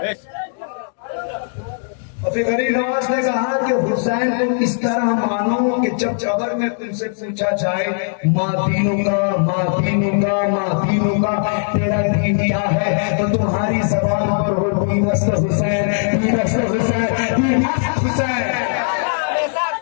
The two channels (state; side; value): silent; right; digital silence